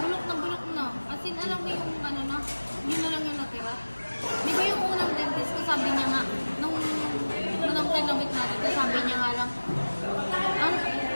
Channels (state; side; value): inverted; both; correlation -1.00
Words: na. As in, alam mo yung ano na, yun na lang yung natira. Di ba yung unang dentist ko, sabi niya nga, nung kinabit natin, sabi niya nga lang,